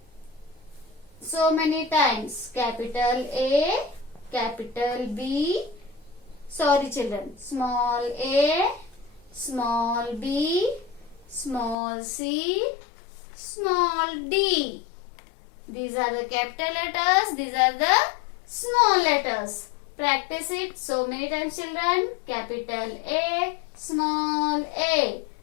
so many times. Capital A, capital B. Sorry, children. Small A, small b, small c, small d. These are the capital letters. These are the small letters. Practice it so many times, children. Capital A, small a.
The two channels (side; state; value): right; drops out; at 11.8 s